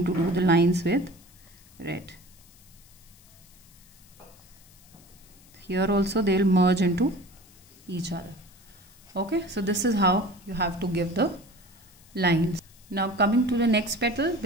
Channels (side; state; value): left; noise; hiss, 25 dB below the sound